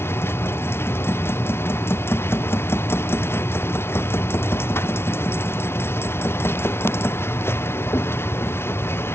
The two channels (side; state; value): right; late; 0.12 ms